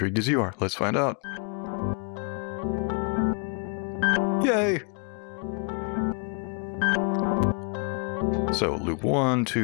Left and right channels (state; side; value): quieter; right; 37.1 dB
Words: as you are. Let's find out. Yay! So loop 1,